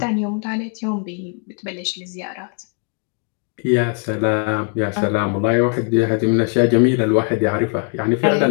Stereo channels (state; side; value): quieter; right; 39.7 dB